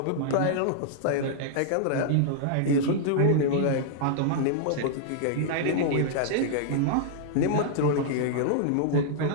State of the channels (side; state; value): both; different; correlation -0.01